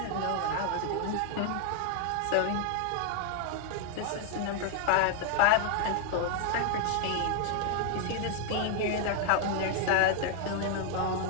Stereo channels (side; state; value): both; different; correlation 0.00